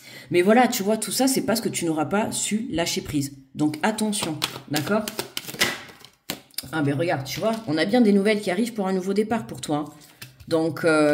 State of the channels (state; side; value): identical; both; correlation 1.00